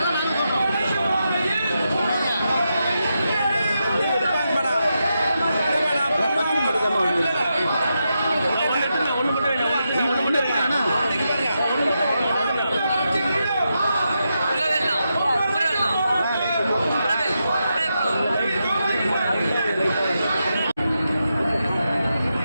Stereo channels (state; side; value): inverted; both; correlation -0.86